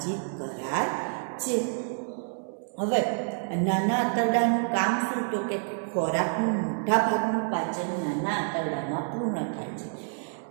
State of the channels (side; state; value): left; silent; digital silence